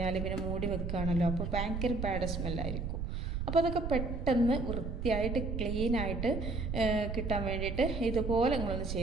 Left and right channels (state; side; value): noise; right; rumble, 3 dB below the sound